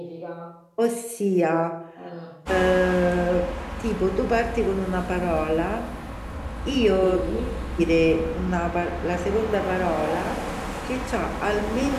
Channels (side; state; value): both; identical; correlation 1.00